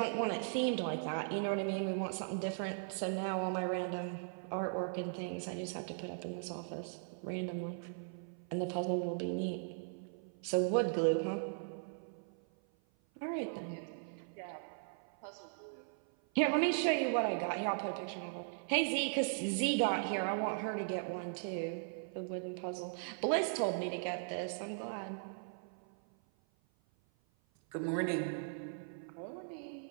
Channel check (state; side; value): silent; left; 52 dB below the other